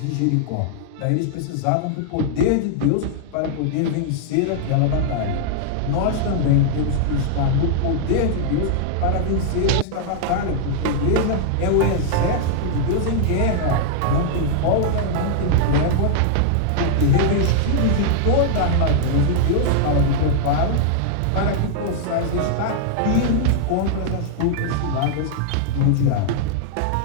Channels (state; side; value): different; both; correlation -0.01